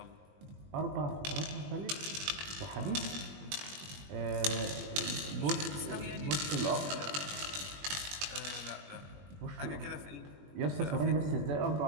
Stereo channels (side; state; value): left; late; 21 ms